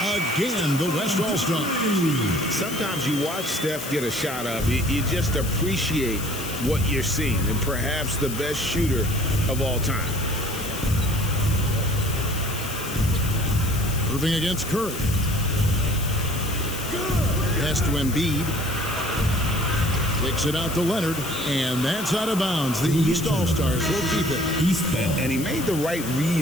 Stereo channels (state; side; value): noise; left; hiss, 9 dB below the sound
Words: the West All-Star. Sometimes you watch Steph get a shot up. You just appreciate what you're seeing, and perhaps the best shooter of all time. Irving against Curry. Pass to Embiid. Kicks it out to Leonard, and that's out of bounds. The East All-Stars will keep it. And he made the right